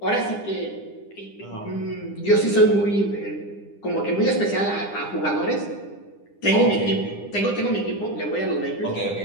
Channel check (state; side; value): late; right; 9.9 ms